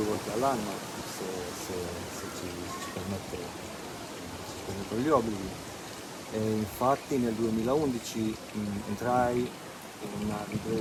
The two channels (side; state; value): both; identical; correlation 1.00